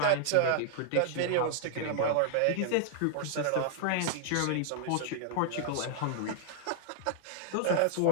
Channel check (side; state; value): both; different; correlation 0.00